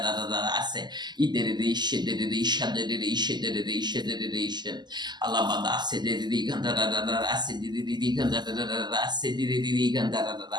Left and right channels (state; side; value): late; left; 0.21 ms